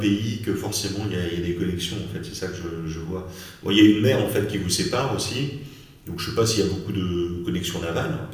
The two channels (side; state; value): both; identical; correlation 1.00